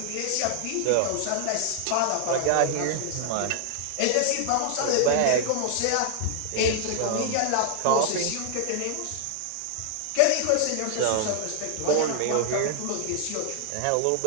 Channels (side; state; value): both; different; correlation 0.00